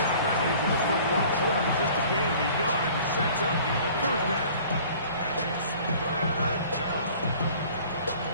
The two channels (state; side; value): inverted; both; correlation -0.49